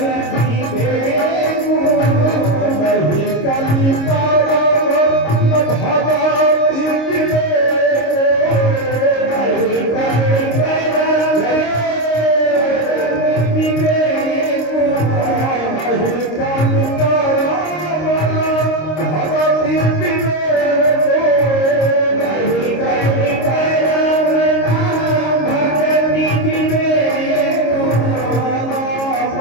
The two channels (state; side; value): late; right; 26 ms